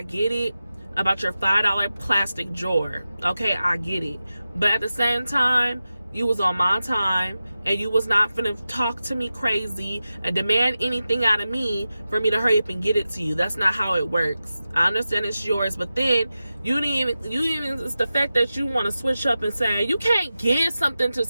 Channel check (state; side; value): inverted; both; correlation -0.93